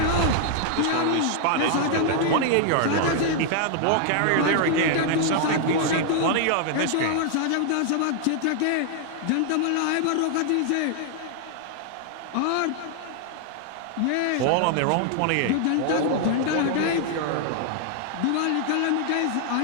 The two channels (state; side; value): different; both; correlation 0.00